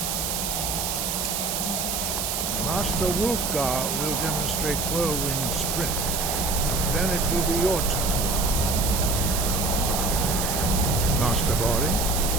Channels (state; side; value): noise; right; hiss, 1 dB below the sound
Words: Master Wolfgar will demonstrate Whirlwind Sprint. Then it will be your turn. Master Bori.